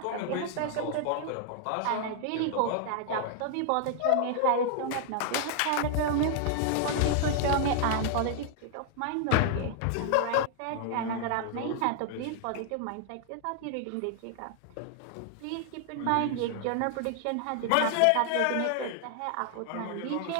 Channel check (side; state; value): both; different; correlation 0.00